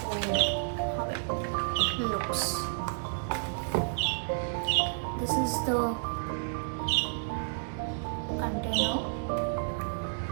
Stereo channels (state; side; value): silent; left; digital silence